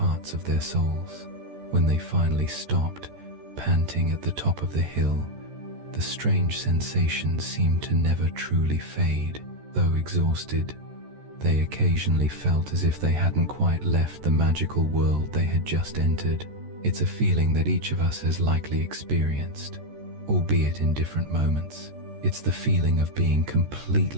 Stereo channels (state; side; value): late; left; 14 ms